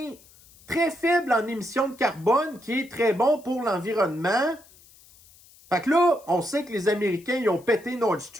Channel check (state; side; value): noise; left; hiss, 26 dB below the sound